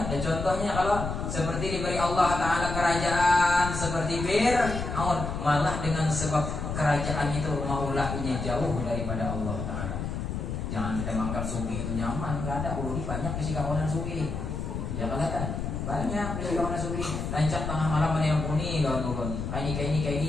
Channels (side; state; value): left; noise; rumble, 4 dB below the sound